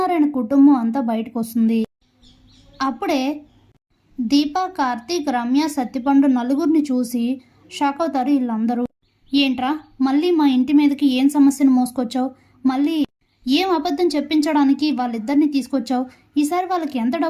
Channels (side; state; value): both; identical; correlation 1.00